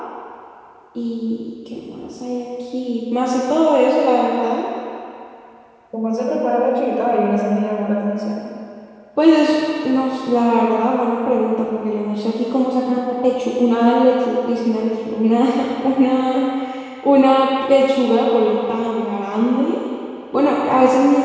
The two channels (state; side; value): identical; both; correlation 1.00